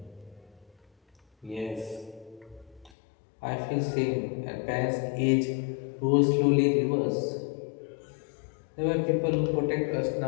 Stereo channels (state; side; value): drops out; right; at 2.9 s